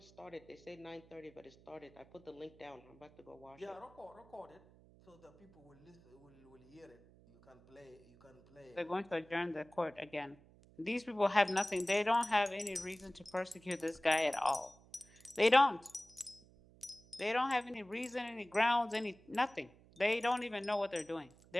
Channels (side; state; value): right; noise; hum, 25 dB below the sound